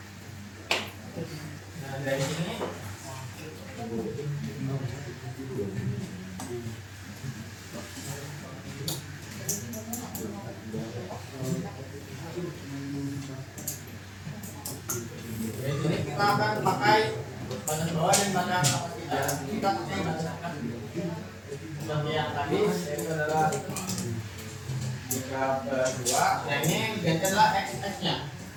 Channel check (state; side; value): identical; both; correlation 1.00